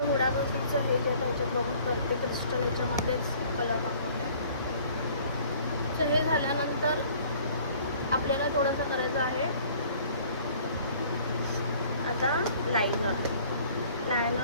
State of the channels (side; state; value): both; inverted; correlation -0.54